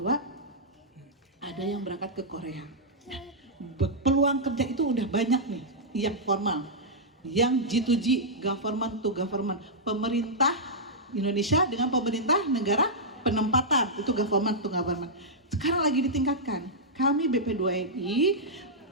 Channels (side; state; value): both; normal; correlation -0.09